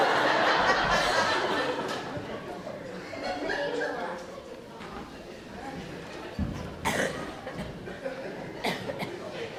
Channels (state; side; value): identical; both; correlation 1.00